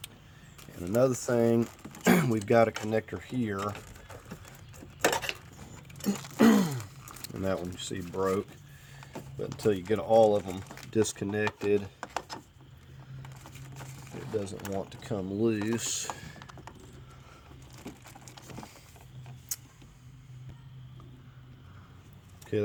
And another thing, we've got a connector here, and that one you see broke, but until you get all of them disconnected, it doesn't want to come loose. Okay,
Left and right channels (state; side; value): identical; both; correlation 1.00